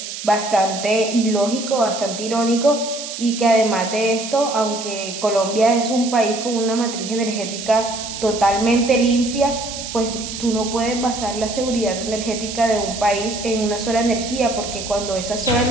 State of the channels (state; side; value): noise; right; hiss, 8 dB below the sound